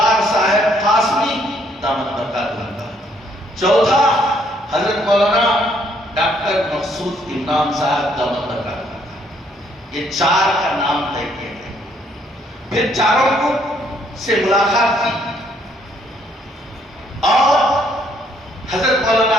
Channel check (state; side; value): normal; both; correlation 0.68